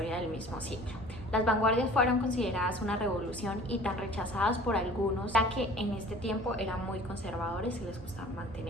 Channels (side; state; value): both; normal; correlation 0.46